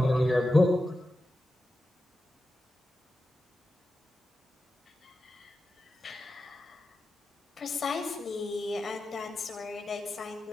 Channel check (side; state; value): both; normal; correlation 0.91